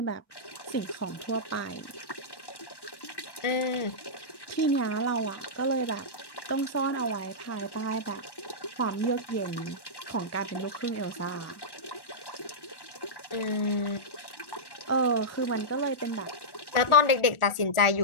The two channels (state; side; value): late; right; 1.1 ms